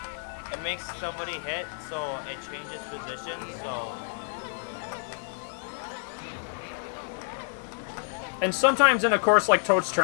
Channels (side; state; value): right; silent; digital silence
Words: It makes somebody hit, so it changes position, so... And sometimes in a course like Toad's